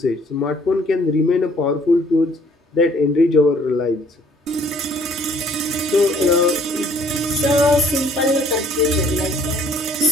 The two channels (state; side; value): normal; both; correlation 0.60